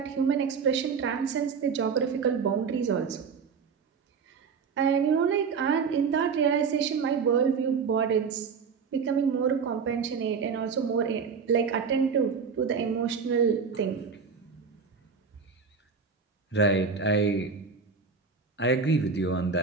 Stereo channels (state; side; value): quieter; left; 5.7 dB